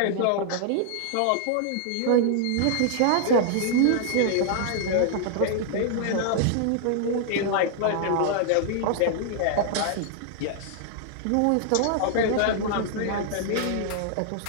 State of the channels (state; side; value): different; both; correlation -0.01